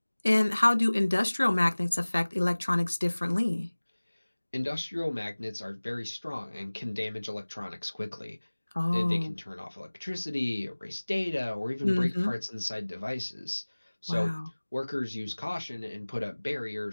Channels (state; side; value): inverted; both; correlation -1.00